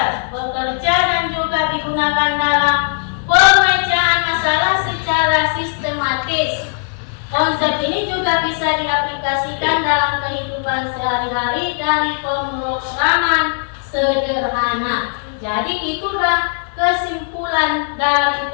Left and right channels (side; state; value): right; silent; digital silence